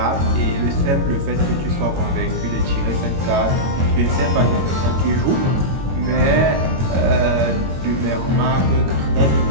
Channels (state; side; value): late; left; 22 ms